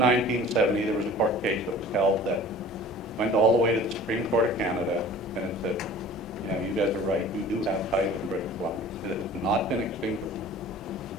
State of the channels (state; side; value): normal; both; correlation 0.44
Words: there was a court case that was held that went all the way to the Supreme Court of Canada, and it said, yeah, you guys are right, you do have title in British Columbia. It has not been extinguished.